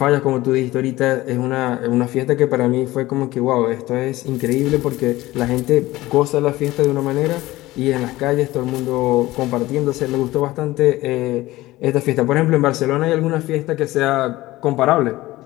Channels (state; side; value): quieter; right; 17.8 dB